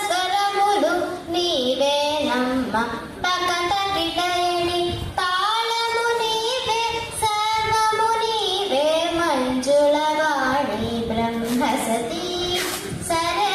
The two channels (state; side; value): identical; both; correlation 1.00